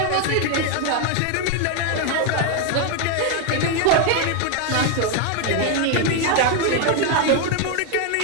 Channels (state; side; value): different; both; correlation 0.01